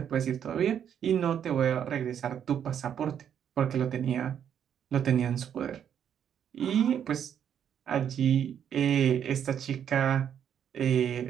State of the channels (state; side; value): quieter; left; 8.9 dB